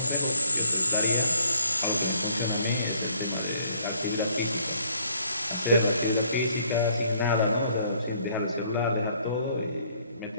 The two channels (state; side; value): inverted; both; correlation -0.65